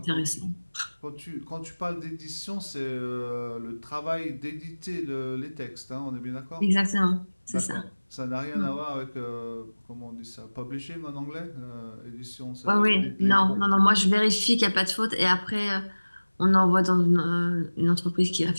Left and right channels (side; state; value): both; inverted; correlation -1.00